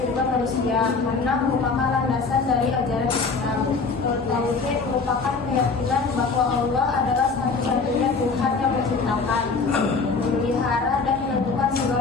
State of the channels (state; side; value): quieter; right; 4.5 dB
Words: manusia karena merupakan landasan dari ajaran Islam. Tauhid merupakan keyakinan bahwa Allah adalah satu-satunya Tuhan yang menciptakan, memelihara dan menentukan